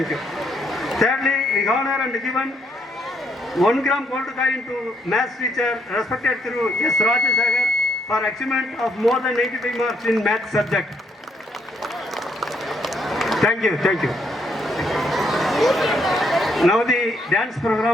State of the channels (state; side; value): normal; both; correlation 0.72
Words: you. Thirdly, we honor and given 1 gram gold coin to maths teacher, respected Thiru S. Rajasagar, for achievement of more than 85 marks in maths subject. Thank you, thank you. Now the dance